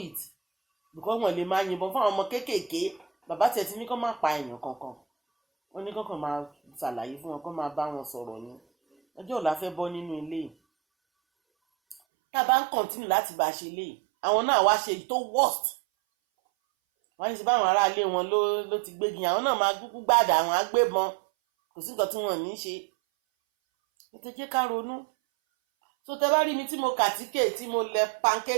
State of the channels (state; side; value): drops out; left; at 12.0 s